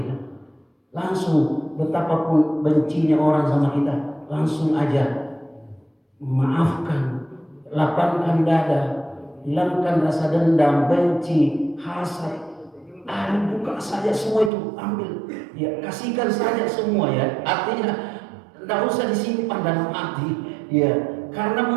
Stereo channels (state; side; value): drops out; left; at 14.5 s